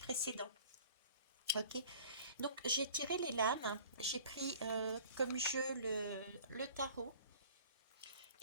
Ok, donc j'ai tiré les lames, j'ai pris comme jeu le tarot.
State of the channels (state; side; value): inverted; both; correlation -0.47